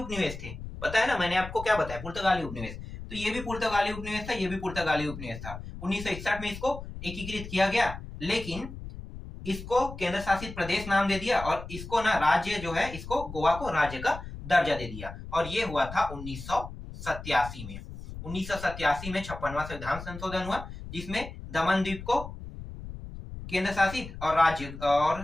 थे, पता है ना, मैंने आपको क्या बताया, पुर्तगाली उपनिवेश। तो ये भी पुर्तगाली उपनिवेश था, ये भी पुर्तगाली उपनिवेश था। 1961 में इसको एकीकृत किया गया, लेकिन इसको केंद्र शासित प्रदेश नाम दे दिया और इसको ना राज्य जो है, इसको गोवा को राज्य का दर्जा दे दिया। और ये हुआ था 1987 में। 1987 में 56वां संविधान संशोधन हुआ, जिसमें दमन द्वीप को केंद्र शासित और राज्य,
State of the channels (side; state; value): left; noise; rumble, 11 dB below the sound